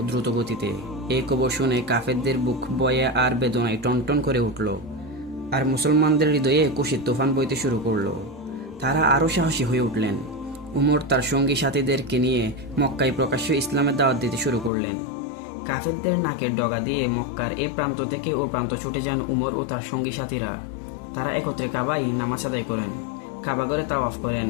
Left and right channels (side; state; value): right; drops out; at 14.7 s